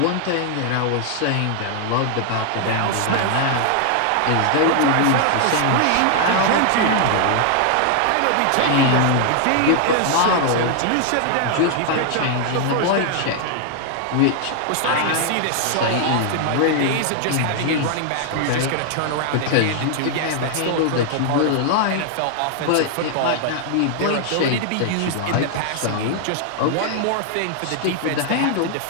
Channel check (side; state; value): both; different; correlation 0.00